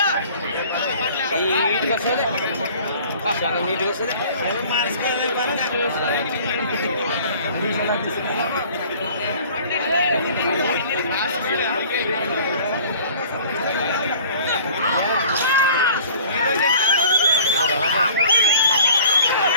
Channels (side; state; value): both; inverted; correlation -0.48